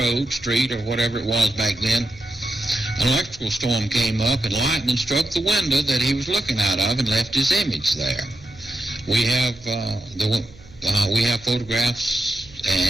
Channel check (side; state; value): right; noise; hum, 22 dB below the sound